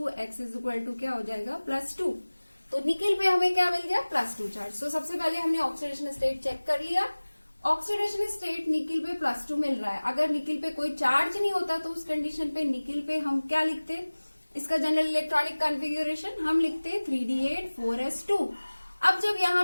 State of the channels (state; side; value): inverted; both; correlation -1.00